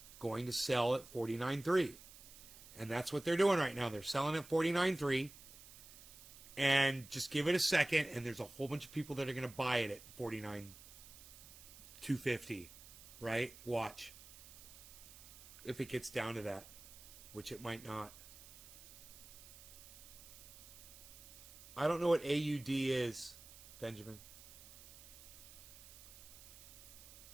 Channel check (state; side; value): noise; right; hiss, 17 dB below the sound